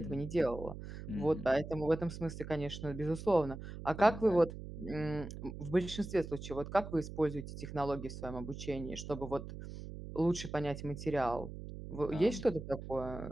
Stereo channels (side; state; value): right; noise; hum, 10 dB below the sound